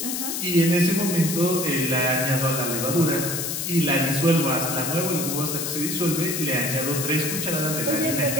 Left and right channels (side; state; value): left; noise; hiss, 3 dB below the sound